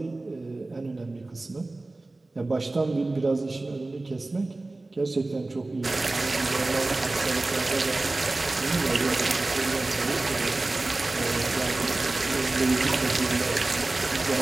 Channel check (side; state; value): left; quieter; 3.1 dB